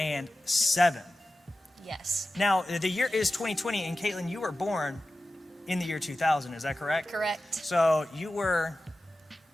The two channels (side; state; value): both; normal; correlation 0.94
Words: Yes. Now, the year is 2020, and Katelynn, you were born in the year 2000, is that correct? Correct. So you were